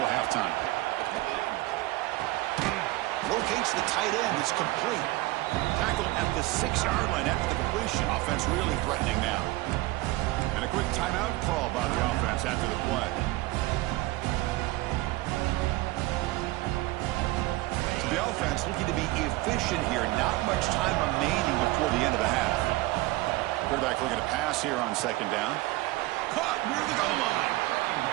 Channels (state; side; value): quieter; left; 19.5 dB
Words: halftime. Locates the tight end. It's complete. Tackle at the 6-yard line after the completion. Offense really threatening now. And a quick timeout call by the offense after the play. So the offense looking to be efficient here. Not much time remaining before the end of the half. Quarterback looking to pass here on second down. Caught near the goal line.